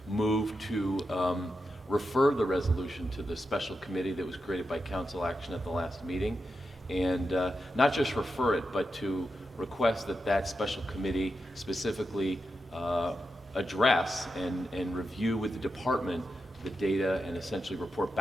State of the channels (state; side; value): normal; both; correlation 0.88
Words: move to refer the resolution to the special committee that was created by council action at the last meeting, and not just refer it, but to request that that special committee specifically address and review with the department the data and essentially report